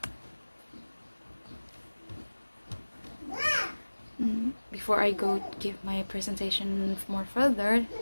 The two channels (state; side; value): inverted; both; correlation -1.00